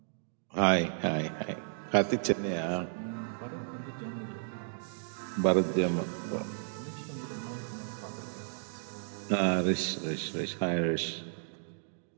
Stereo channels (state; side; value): silent; left; digital silence